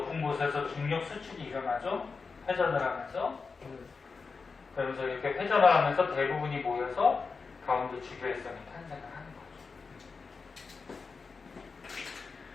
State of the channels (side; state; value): right; quieter; 4.7 dB